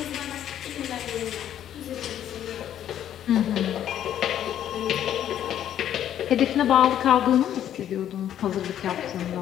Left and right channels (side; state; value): right; quieter; 10.7 dB